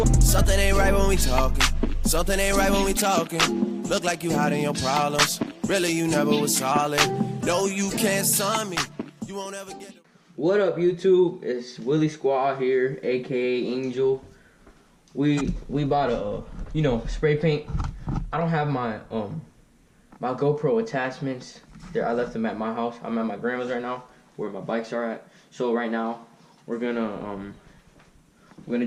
Something ain't right when we talking. Something ain't right when we talking. Look like you hiding your problems. Really, you never was solid. No, you can't sign me. You won't ever get... What up, YouTube? It's Willie Squad here, aka Angel. We bought a spray paint. I don't have my my GoPro attachments there. I left them at my house. I'm at my grandma's right now, where my bikes are at. So right now we're gonna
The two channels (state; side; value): identical; both; correlation 1.00